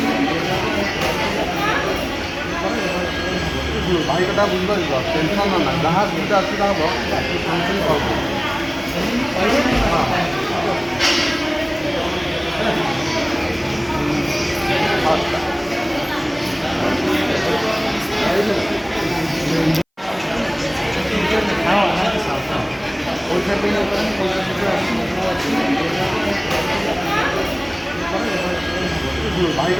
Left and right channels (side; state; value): both; identical; correlation 1.00